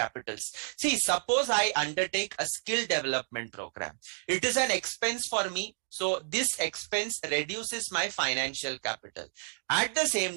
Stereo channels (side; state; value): left; silent; digital silence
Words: See, suppose I undertake a skill development program. It is an expense for me. So this expense reduces my financial capital. At the